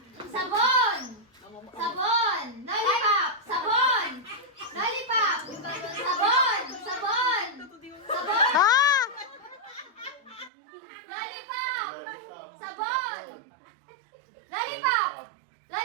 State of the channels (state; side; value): drops out; left; at 10.5 s